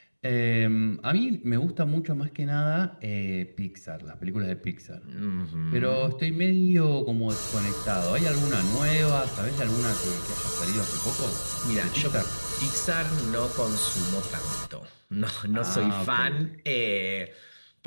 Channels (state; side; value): inverted; both; correlation -1.00